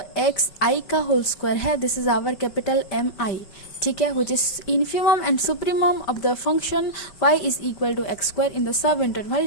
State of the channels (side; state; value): right; late; 5.0 ms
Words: एक्स आई का होल स्क्वायर है, this is our capital M i, ठीक है, which is infimum and supremum of the function y is equal to x square in the sub